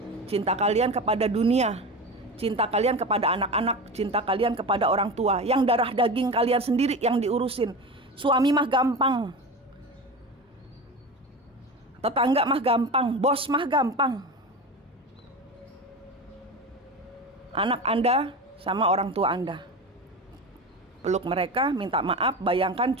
cinta kalian kepada dunia, cinta kalian kepada anak-anak, cinta kalian kepada orang tua, yang darah daging kalian sendiri yang diurusin. Suami mah gampang, tetangga mah gampang, bos mah gampang. Anak Anda sama orang tua Anda, peluk mereka, minta maaf, bayangkan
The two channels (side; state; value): both; normal; correlation 0.27